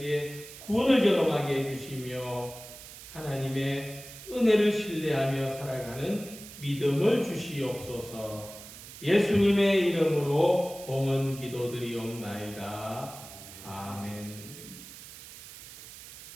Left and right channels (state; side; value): noise; right; hiss, 15 dB below the sound